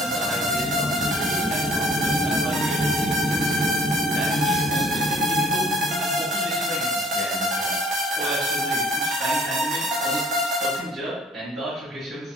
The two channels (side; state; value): both; normal; correlation 0.57